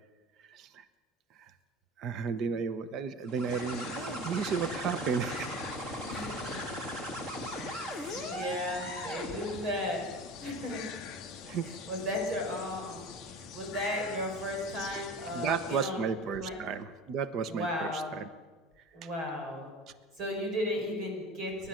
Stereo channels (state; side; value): normal; both; correlation 0.36